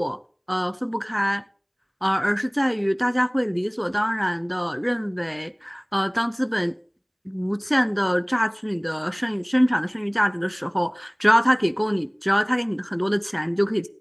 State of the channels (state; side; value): identical; both; correlation 1.00